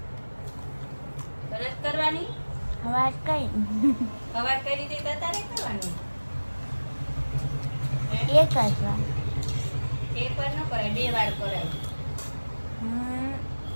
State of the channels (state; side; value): inverted; both; correlation -1.00